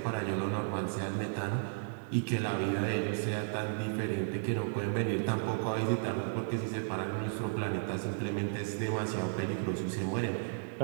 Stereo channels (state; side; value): silent; left; digital silence